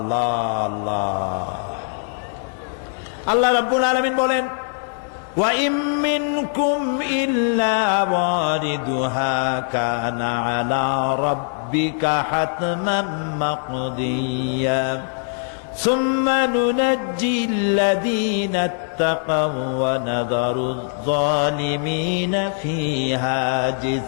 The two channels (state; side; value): silent; right; digital silence